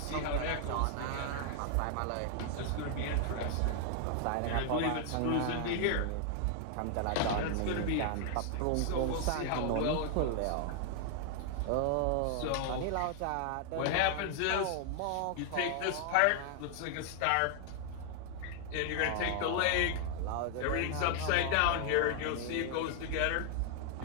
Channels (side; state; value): both; different; correlation 0.00